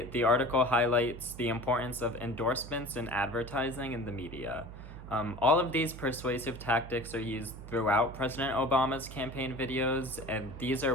the article highlights the importance of endorsements in advertising in the media. All of these persuasive tactics are used throughout President Obama's campaign videos, and these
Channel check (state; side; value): noise; right; hum, 13 dB below the sound